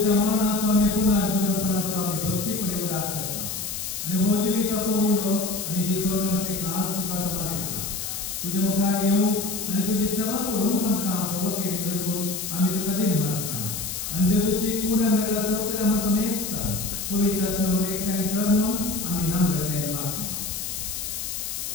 मरणाचो आणि पुनर्जीवनपणाचो आम्ही भक्तीपणे उल्हास करता तुझे सोडूनचे खास तुका समर्पिता तुझे मुखार येऊ आणि तुझी सेवा करून आमकां फोव केली देखून आमी तुका दिनवासता आणि तुझी कूड नगरा सौकर्य आम्हा समेस्ता पवित्र आत्म्यावर एकठांय कर म्हूण आमी नम्रतायेन मागता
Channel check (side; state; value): left; noise; hiss, 5 dB below the sound